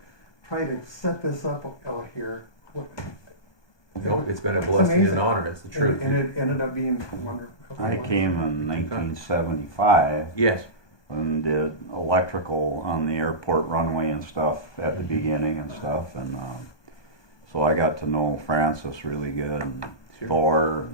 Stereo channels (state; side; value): late; right; 1.2 ms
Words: try to set this up out here. Nope, it's been a blessing and an amazing. honor, it's the truth. And it ended up being wonderful. I came in 1975 Yes, and did electrical on the airport runway and stuff at the beginning and stuff, and so I got to know Francis really good, and sure. Thor